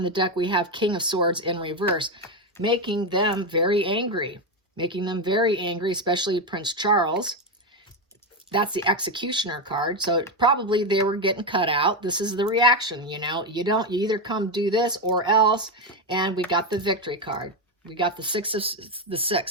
the deck, we have King of Swords in reverse, making them very angry. Making them very angry, especially Prince Charles. That's the Executioner card. So probably they were getting cut out. This is the reaction, you know. You either come do this or else. And we got the Victory card. We got the six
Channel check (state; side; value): normal; both; correlation 0.09